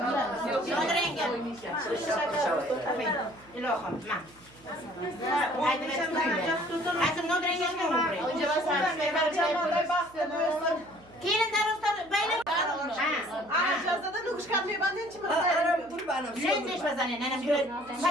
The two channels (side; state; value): right; noise; hum, 26 dB below the sound